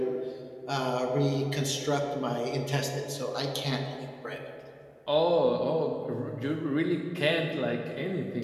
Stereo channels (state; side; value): identical; both; correlation 1.00